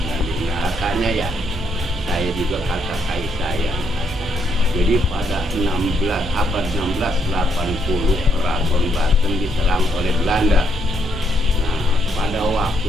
nanti kakaknya ya. Saya juga kakak saya. Jadi pada abad 1680 Keraton Banten diserang oleh Belanda. Nah, pada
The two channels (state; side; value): normal; both; correlation 0.74